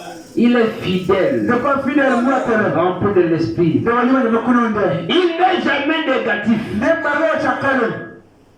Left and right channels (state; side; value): identical; both; correlation 1.00